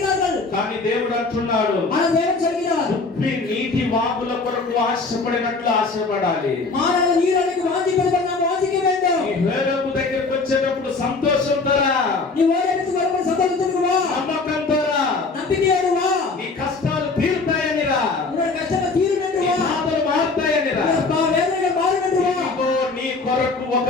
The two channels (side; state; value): right; quieter; 3.9 dB